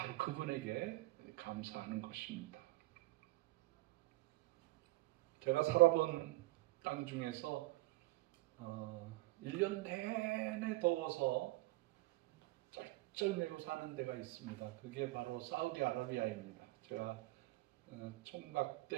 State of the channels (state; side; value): quieter; left; 20.4 dB